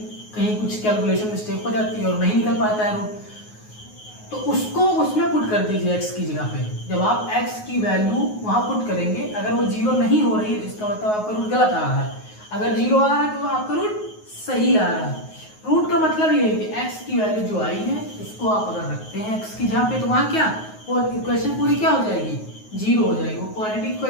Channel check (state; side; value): late; right; 9.4 ms